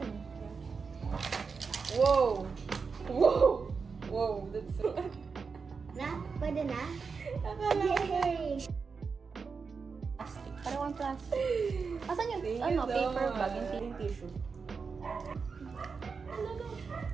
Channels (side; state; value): left; quieter; 5.2 dB